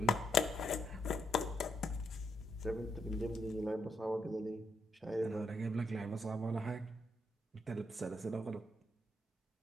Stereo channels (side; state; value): both; normal; correlation 0.78